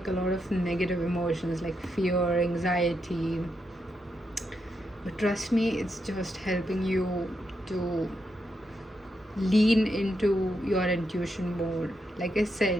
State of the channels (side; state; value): both; normal; correlation 0.82